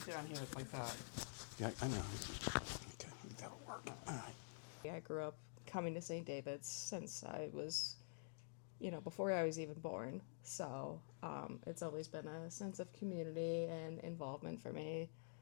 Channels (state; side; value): silent; right; digital silence